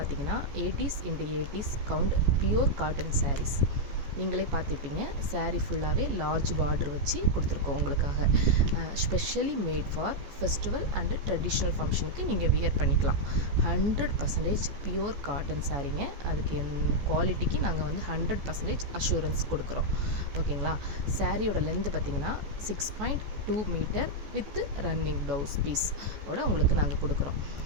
80s into 80s count pure cotton saris. நீங்களே பார்த்துப்பீங்க, சாரீ ஃபுல்லாகவே லார்ஜ் பார்டர் வச்சு கொடுத்துருக்கோம் உங்களுக்காக. Specially made for festival and traditional ஃபங்க்ஷனுக்கு நீங்கள் வியர் பண்ணிக்கலாம். 100% பியூர் காட்டன் சாரீங்க. அதுக்கு குவாலிட்டிக்கு நாங்கள் 100% அஷூரன்ஸ் கொடுக்குறோம். ஓகேங்களா, சாரியோட லென்த்து பார்த்திங்கன்னா 6.2 metre with running blouse piece ஓட உங்களுக்கு நாங்கள் கொடுக்குறோம்.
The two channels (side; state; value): left; late; 14 ms